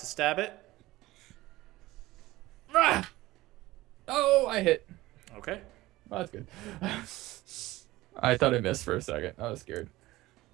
stab it. Ah! Oh, I hit. Okay. Oh, that's good. I thought I missed for a second. I was scared.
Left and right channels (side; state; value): left; quieter; 18.1 dB